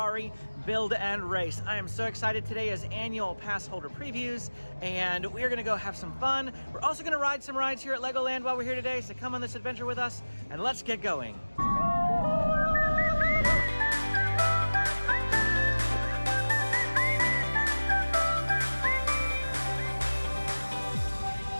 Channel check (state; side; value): inverted; both; correlation -1.00